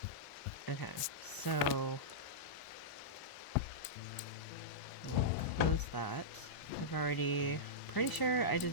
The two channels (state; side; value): late; right; 1.0 ms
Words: Okay, so we'll close that. I've already, pretty sure I